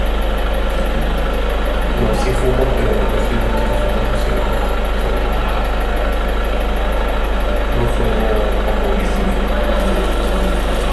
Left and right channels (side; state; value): both; identical; correlation 1.00